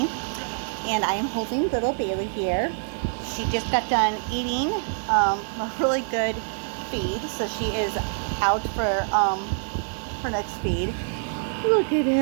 and I am holding little Bailey here. She just got done eating a really good feed, so she is out for her next feed. Look at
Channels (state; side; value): silent; left; digital silence